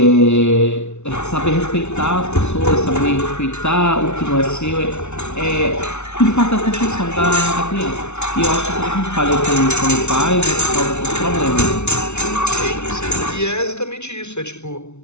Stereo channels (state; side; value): late; right; 0.82 ms